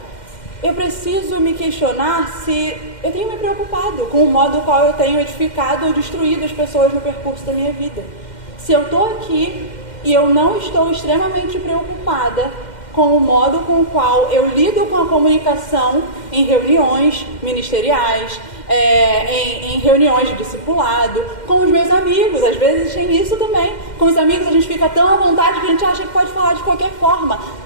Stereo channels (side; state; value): right; late; 2.1 ms